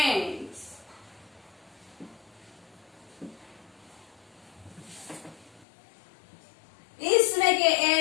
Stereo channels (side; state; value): right; drops out; at 5.7 s